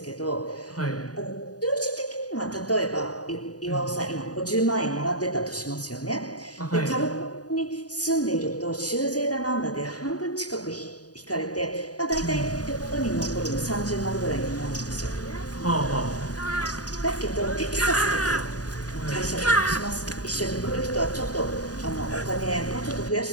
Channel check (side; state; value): right; late; 0.68 ms